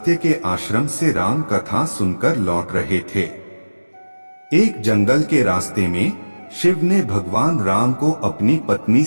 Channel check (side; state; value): both; inverted; correlation -1.00